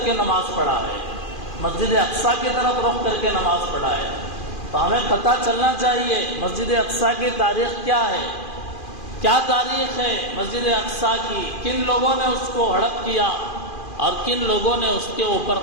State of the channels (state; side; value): late; right; 2.4 ms